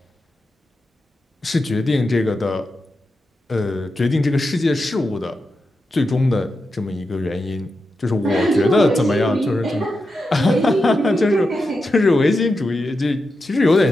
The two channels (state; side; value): normal; both; correlation 0.88